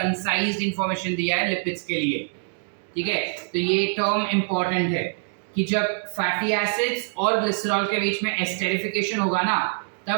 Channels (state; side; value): silent; left; digital silence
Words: इंफॉर्मेशन दिया है लिपिड्स के लिए। ठीक है, तो ये टर्म इंपॉर्टेंट है कि जब फैटी एसिड्स और ग्लिसरॉल के बीच में एस्टेरिफिकेशन होगा ना,